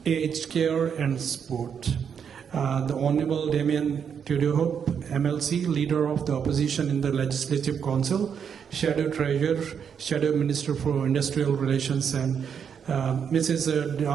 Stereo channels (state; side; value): quieter; left; 7.4 dB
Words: Aged Care and Sport. The Honorable Damien Tudorhope, MLC, Leader of the Opposition in the Legislative Council, Shadow Treasurer, Shadow Minister for Industrial Relations, and Mrs.